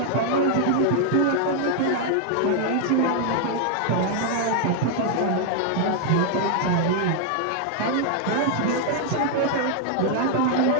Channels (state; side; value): different; both; correlation 0.00